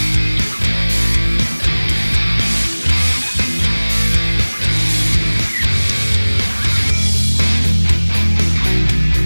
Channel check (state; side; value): inverted; both; correlation -1.00